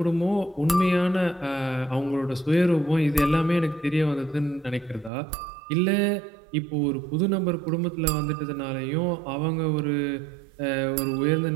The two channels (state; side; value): drops out; left; at 5.1 s